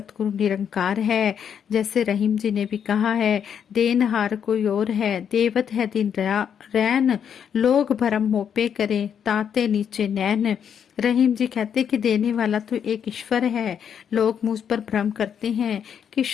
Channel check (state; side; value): quieter; right; 8.1 dB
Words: निरंकार है। जैसे रहीम जी ने भी कहा है, देनहार कोई और है, देवत है दिन रैन, लोग भरम मोपे करे ताते नीचे नैन। रहीम जी कहते कि देने वाला तो एक ईश्वर है, लोग मुझ पर भ्रम करते हैं कि